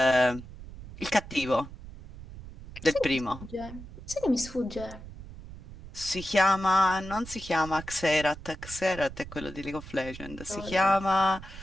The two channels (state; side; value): noise; right; rumble, 14 dB below the sound